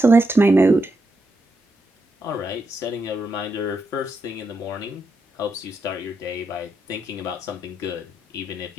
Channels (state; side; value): normal; both; correlation 0.83